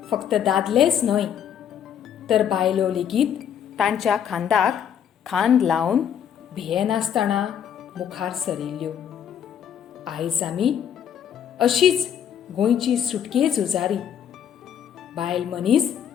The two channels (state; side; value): quieter; right; 8.9 dB